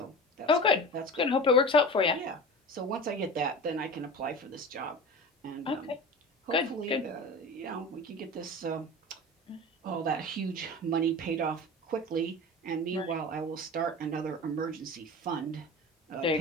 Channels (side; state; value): both; normal; correlation 0.33